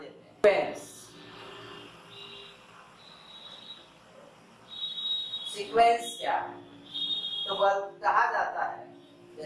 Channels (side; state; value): both; identical; correlation 1.00